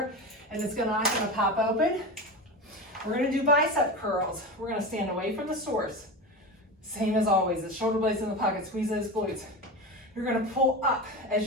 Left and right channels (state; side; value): normal; both; correlation 0.24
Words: and it's not gonna pop open. We're gonna do bicep curls. We're gonna stand away from the source. Same as always, the shoulder blades in the pocket, squeeze those glutes. You're gonna pull up. As